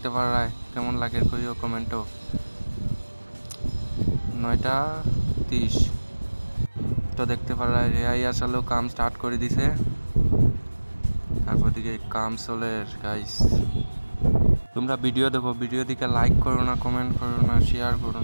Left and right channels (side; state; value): both; inverted; correlation -1.00